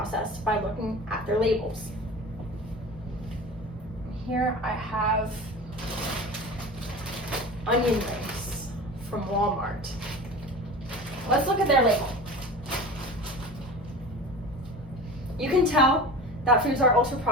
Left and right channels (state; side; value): normal; both; correlation 0.34